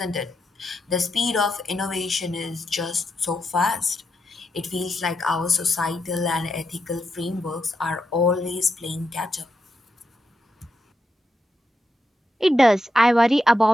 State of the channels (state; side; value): normal; both; correlation 0.84